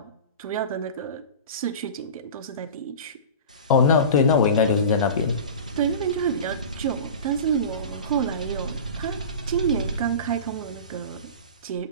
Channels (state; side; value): inverted; both; correlation -0.32